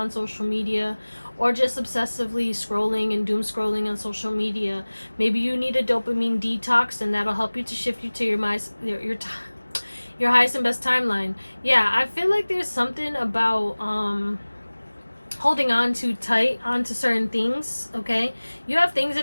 social media. Or just obsessively scrolling and doom scrolling on social media. Maybe you need a dopamine detox and that'll help you to shift you to your highest and best timeline. Yeah, I feel like there's something about holding on too tight onto certain things, okay? You have things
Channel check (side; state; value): both; inverted; correlation -1.00